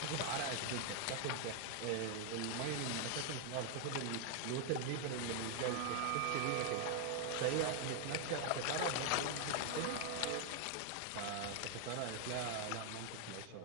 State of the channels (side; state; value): both; different; correlation 0.00